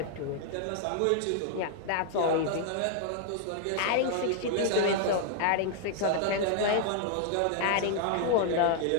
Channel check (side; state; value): both; different; correlation -0.01